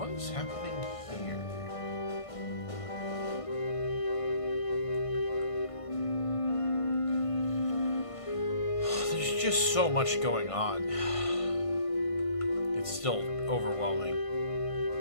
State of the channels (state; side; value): late; right; 1.5 ms